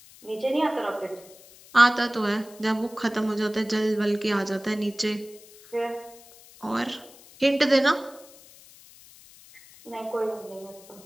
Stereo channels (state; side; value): noise; left; hiss, 22 dB below the sound